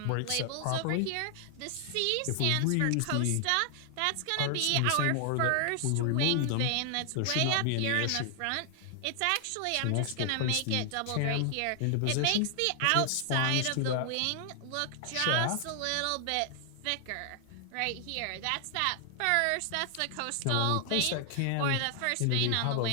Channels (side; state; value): both; different; correlation 0.00